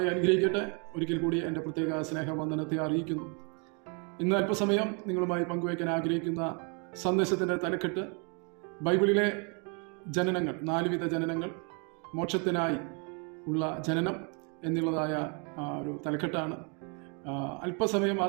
അനുഗ്രഹിക്കട്ടെ. ഒരിക്കൽ കൂടി എൻ്റെ പ്രത്യേക സ്നേഹവന്ദനത്തെ അറിയിക്കുന്നു. ഇന്ന് അല്പസമയം നിങ്ങളുമായി പങ്കുവയ്ക്കാൻ ആഗ്രഹിക്കുന്ന സന്ദേശത്തിൻ്റെ തലക്കെട്ട് ബൈബിളിലെ ജനനങ്ങൾ, 4 വിധ ജനനങ്ങൾ, മോക്ഷത്തിനായി ഉള്ള ജനനം എന്നുള്ളതായ ഒരു തലക്കെട്ടാണ്. അല്പസമയം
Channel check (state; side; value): quieter; left; 36.2 dB